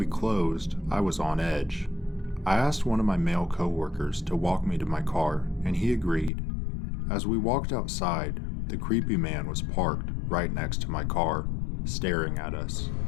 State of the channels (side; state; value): right; drops out; at 6.3 s